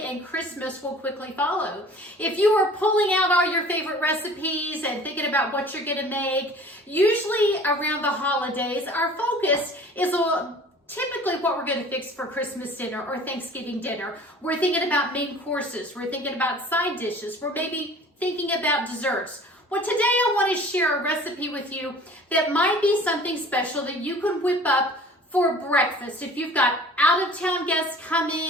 and Christmas will quickly follow. If you are pulling out all your favorite recipes and thinking about what you're going to make, usually around the holidays, our focus is typically what we're going to fix for Christmas dinner or Thanksgiving dinner. We're thinking about main courses. We're thinking about side dishes. We're maybe thinking about desserts. Well, today I want to share a recipe with you that might be something special that you can whip up for breakfast. If you've got out-of-town guests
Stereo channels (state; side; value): normal; both; correlation 0.46